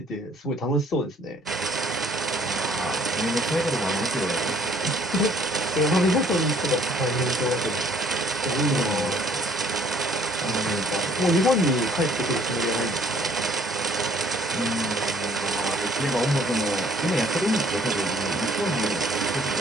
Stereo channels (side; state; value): both; normal; correlation 0.60